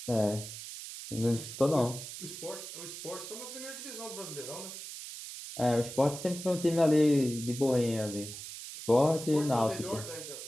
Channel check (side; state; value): right; noise; hiss, 10 dB below the sound